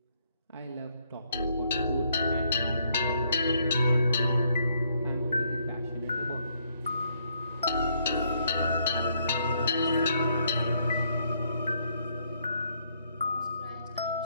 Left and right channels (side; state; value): both; inverted; correlation -0.71